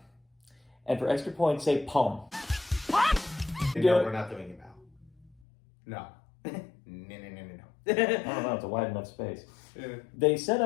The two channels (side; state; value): right; drops out; at 5.4 s